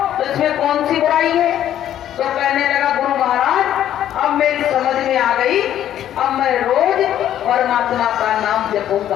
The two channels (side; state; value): right; quieter; 11.3 dB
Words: तो इसमें कौन सी बुराई है? तो कहने लगा गुरु महाराज अब मेरी समझ में आ गई, अब मैं रोज परमात्मा का नाम